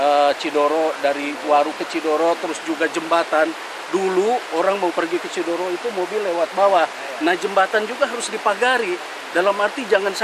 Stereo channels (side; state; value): both; identical; correlation 1.00